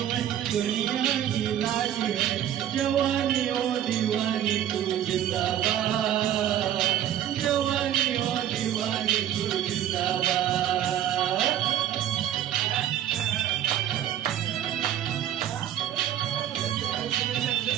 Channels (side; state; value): left; quieter; 11.0 dB